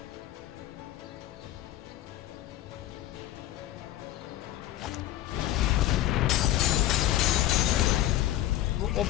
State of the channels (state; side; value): quieter; right; 14.1 dB